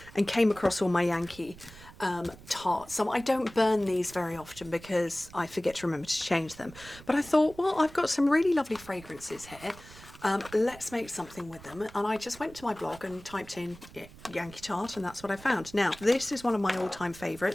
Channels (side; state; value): right; noise; rumble, 19 dB below the sound